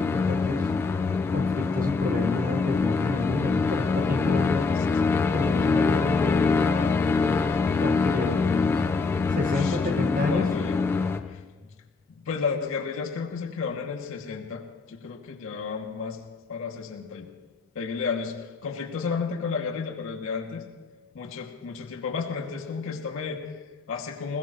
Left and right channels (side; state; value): right; quieter; 4.1 dB